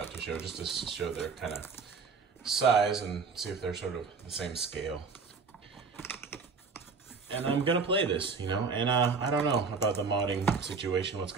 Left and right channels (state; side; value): quieter; left; 4.9 dB